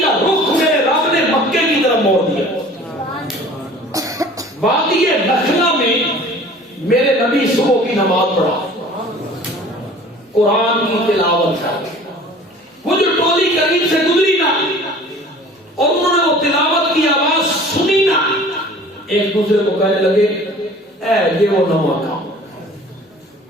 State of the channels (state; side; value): normal; both; correlation 0.46